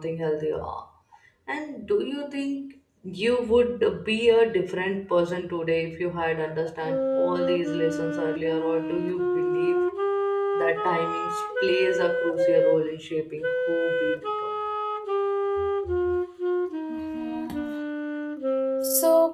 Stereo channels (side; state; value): both; identical; correlation 1.00